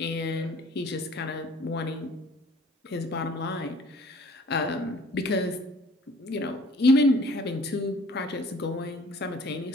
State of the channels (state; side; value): normal; both; correlation 0.52